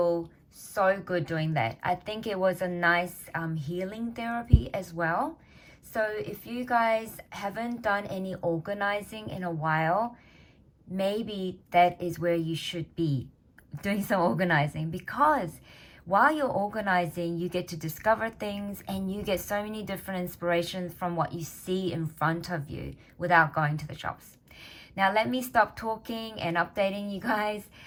so good doing that. I think it was a nice healing therapy as well. So if you guys haven't done any organizing in a while, maybe that is where you should be doing some organizing, because while you're organizing, you get to discover things and you get so many different inspirations from what you see in front of you without going to the shops. Now let me stop talking and updating you guys.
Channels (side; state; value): both; identical; correlation 1.00